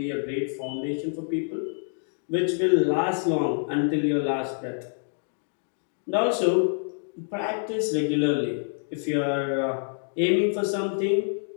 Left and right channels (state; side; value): silent; right; digital silence